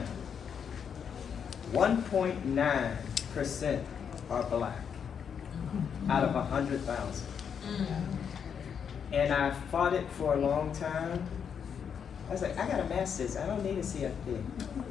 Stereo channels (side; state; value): right; quieter; 7.3 dB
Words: 1.9% are black out of 100,000. And I fought it for a long time. I was like, I got a master's, I don't need a CFP.